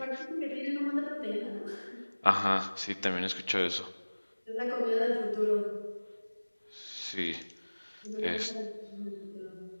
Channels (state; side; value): inverted; both; correlation -1.00